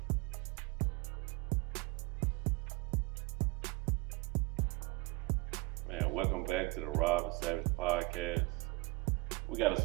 Man, welcome back to the Rob and Savage podcast. We got a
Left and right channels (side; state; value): left; quieter; 23.8 dB